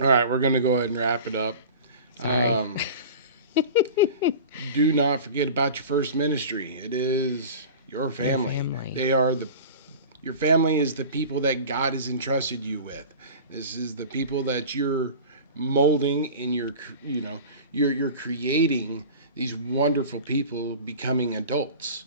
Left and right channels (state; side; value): inverted; both; correlation -0.36